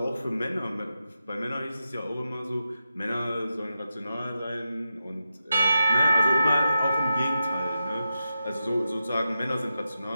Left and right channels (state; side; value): inverted; both; correlation -0.89